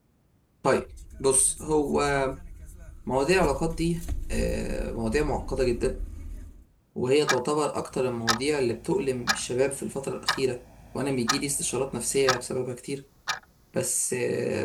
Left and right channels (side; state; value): both; identical; correlation 1.00